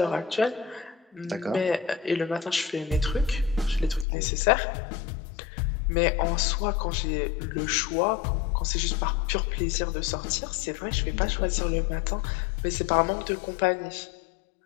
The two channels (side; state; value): right; drops out; at 4.0 s